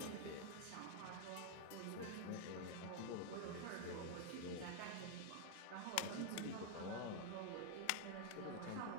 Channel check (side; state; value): both; different; correlation 0.00